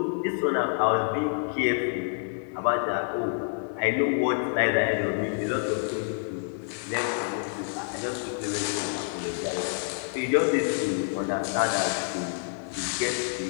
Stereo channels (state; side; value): silent; right; 57 dB below the other